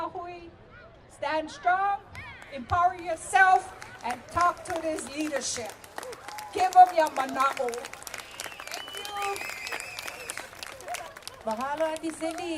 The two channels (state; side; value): identical; both; correlation 1.00